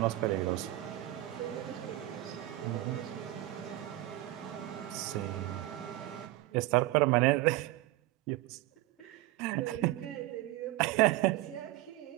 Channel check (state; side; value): quieter; left; 16.4 dB